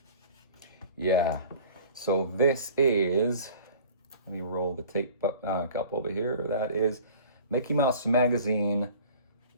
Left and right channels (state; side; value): inverted; both; correlation -0.45